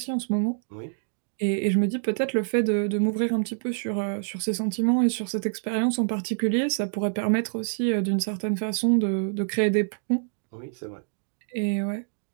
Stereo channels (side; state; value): left; silent; digital silence